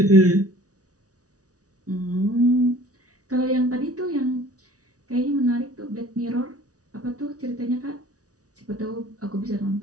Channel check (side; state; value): left; late; 0.67 ms